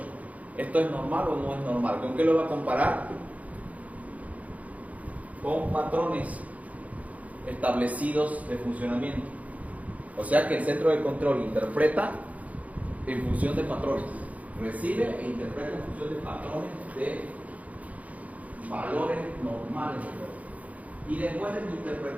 ¿Esto es normal o no es normal? ¿Con qué lo va a comparar? Con patrones establecidos de funcionamiento. O sea que el centro de control interpreta en función de patrones. Recibe e interpreta en función de patrones de valores normales. Y después de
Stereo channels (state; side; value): late; left; 0.071 ms